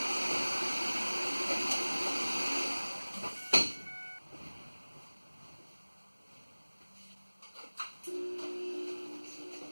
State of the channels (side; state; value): both; inverted; correlation -1.00